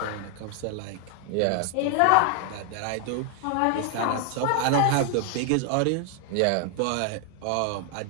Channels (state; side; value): different; both; correlation 0.00